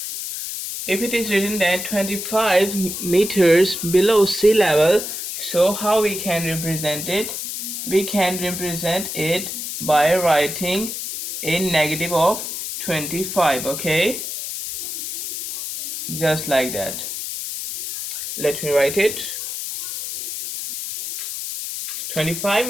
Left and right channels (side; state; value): left; noise; hiss, 6 dB below the sound